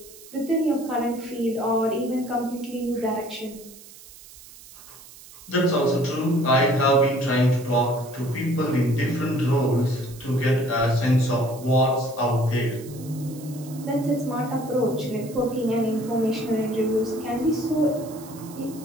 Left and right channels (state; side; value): noise; right; hiss, 19 dB below the sound